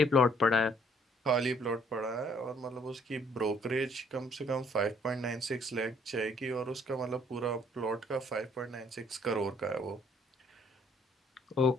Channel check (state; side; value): normal; both; correlation 0.63